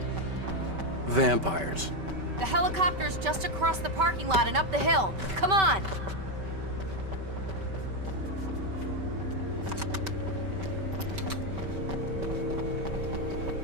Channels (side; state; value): left; late; 5.2 ms